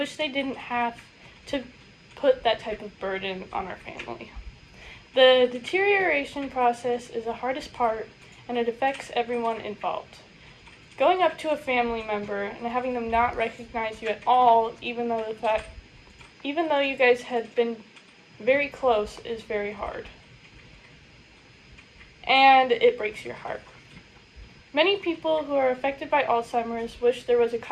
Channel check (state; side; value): identical; both; correlation 1.00